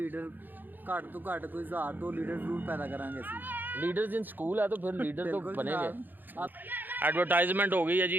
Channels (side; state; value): left; late; 0.089 ms